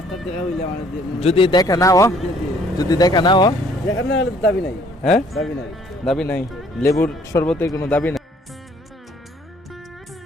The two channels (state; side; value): normal; both; correlation 0.60